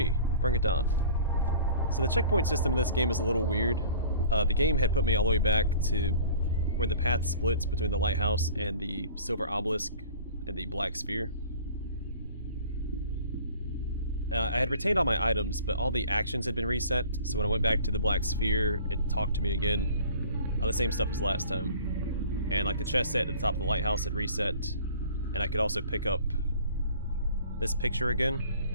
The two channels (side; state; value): both; inverted; correlation -0.47